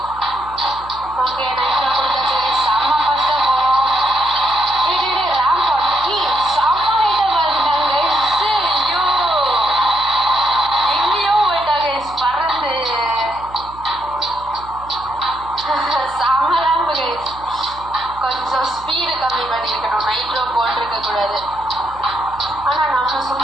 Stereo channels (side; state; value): right; noise; hum, 19 dB below the sound